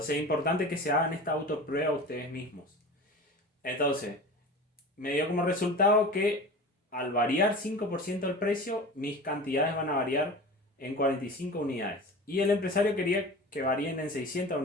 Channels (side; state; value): both; normal; correlation 0.35